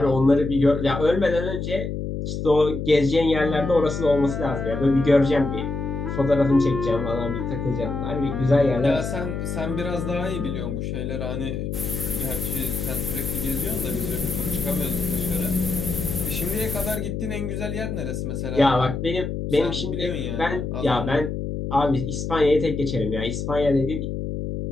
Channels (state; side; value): noise; left; hum, 4 dB below the sound